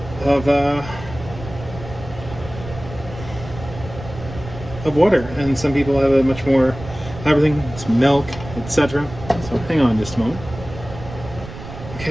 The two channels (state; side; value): noise; right; rumble, 13 dB below the sound